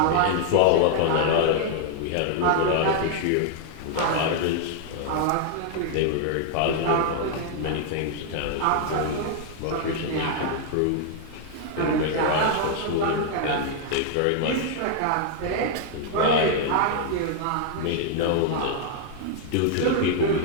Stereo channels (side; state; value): both; different; correlation 0.00